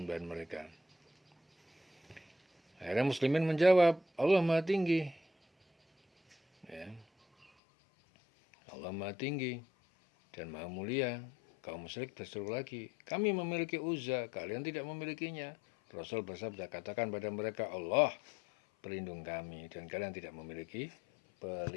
mereka. Akhirnya muslimin menjawab, Allah Maha Tinggi. Ya. Allah Maha Tinggi dan Maha Mulia. Kaum musyrik berseru lagi, kami memiliki Uzza, kalian tidak memilikinya. Rasul bersabda, katakan pada mereka, Allah pelindung kami dan kalian tidak memiliki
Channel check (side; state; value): right; drops out; at 7.5 s